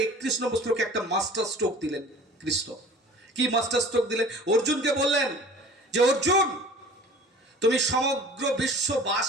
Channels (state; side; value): normal; both; correlation 0.44